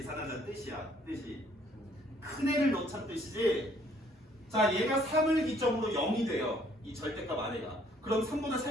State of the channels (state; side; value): normal; both; correlation 0.63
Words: 뜻이야. 뜻이. 큰 애를 넣자는 뜻이지? 자, 얘가 3을 기점으로 0이 돼요. 이 절대값 안에가. 그럼 3보다